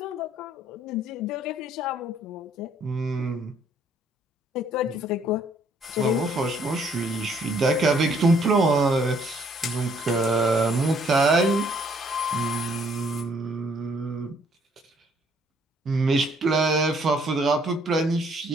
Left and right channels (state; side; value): normal; both; correlation 0.65